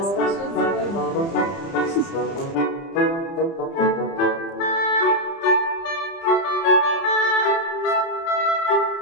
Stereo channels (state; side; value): late; right; 30 ms